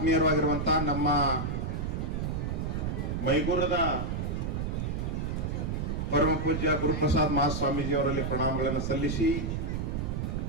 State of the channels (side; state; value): right; noise; rumble, 1 dB below the sound